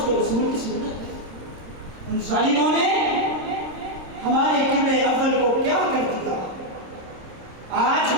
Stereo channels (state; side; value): late; left; 26 ms